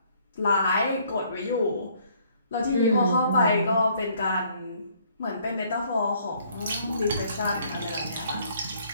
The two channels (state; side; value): inverted; both; correlation -0.63